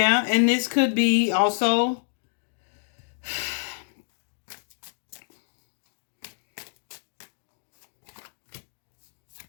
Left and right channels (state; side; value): silent; right; digital silence